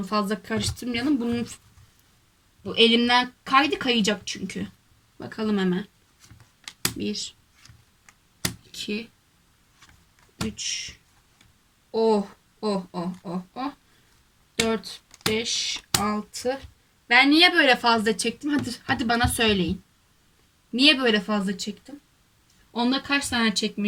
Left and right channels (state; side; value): identical; both; correlation 1.00